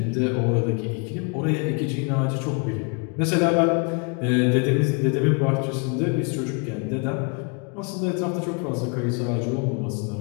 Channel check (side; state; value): right; quieter; 34.4 dB